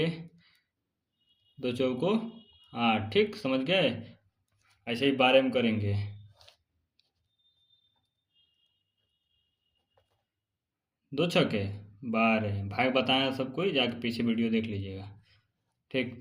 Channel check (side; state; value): both; identical; correlation 1.00